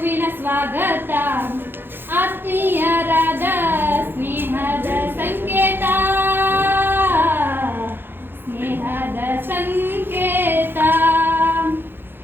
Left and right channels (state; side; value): late; left; 0.10 ms